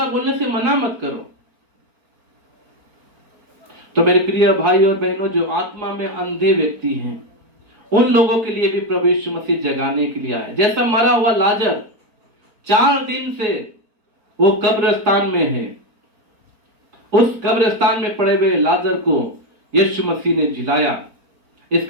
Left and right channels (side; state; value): left; late; 4.4 ms